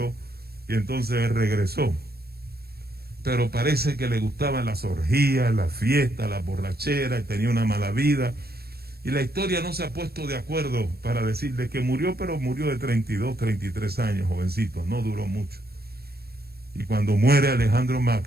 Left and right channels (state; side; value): late; left; 0.46 ms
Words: y entonces él regresó. Pero parece que le gustaban las orgías, las fiestas, las borracheras, y tenía una mala vida. Y la historia no se ha puesto de acuerdo para decir de que murió, pero murió de 32, 33 años, jovencito, no duró mucho. Y cuando muere Alejandro